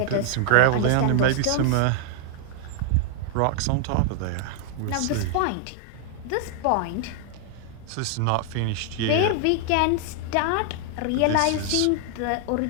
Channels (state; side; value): different; both; correlation 0.00